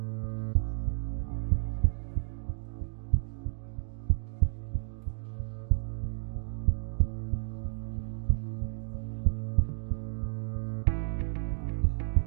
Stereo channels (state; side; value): silent; left; 57 dB below the other